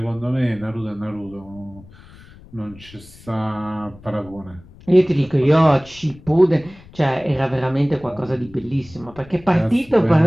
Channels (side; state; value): left; noise; rumble, 22 dB below the sound